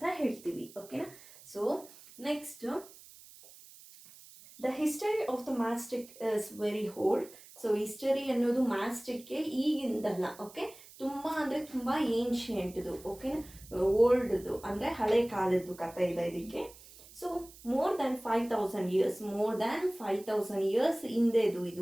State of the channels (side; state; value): right; noise; hiss, 20 dB below the sound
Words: ಹೇಳ್ತೀವಿ. ಓಕೆನಾ? So next, the history of the mastic is very old. So history ಅನ್ನೋದು ಮ್ಯಾಸ್ಟಿಕ್ಗೆ ಈಗಿಂದಲ್ಲ, ತುಂಬ ಅಂದರೆ ತುಂಬ ಏನ್ಷಿಯಂಟ್ದು, ಓಕೆನಾ, ಓಲ್ಡ್ದು ಅಂದರೆ ಹಳೆ ಕಾಲದ್ದು ಕಥೆ ಇದೆ ಇದಕ್ಕೆ. So more than 5000 years, more than 5000 years ಹಿಂದೆದು